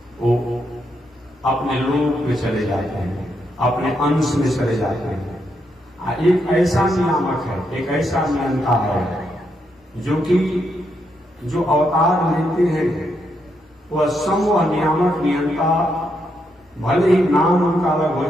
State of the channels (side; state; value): both; normal; correlation 0.80